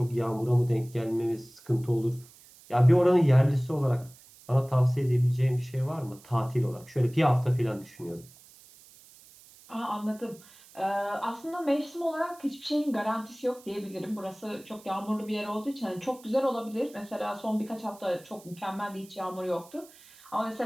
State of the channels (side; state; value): right; noise; hiss, 24 dB below the sound